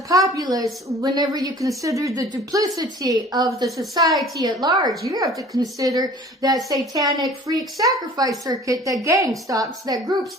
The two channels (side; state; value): both; normal; correlation 0.48